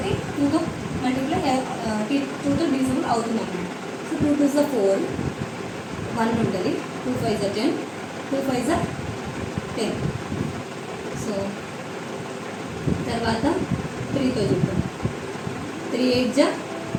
2తో మల్టిప్లై 2తో డివిజిబుల్ అవుతుంది అన్నమాట. సో 2 2s 4, 1 ఉంటుంది, 2 5s 10, 2 5s 10. తర్వాత 3తో చూద్దాం. 3 8 జా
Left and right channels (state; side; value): identical; both; correlation 1.00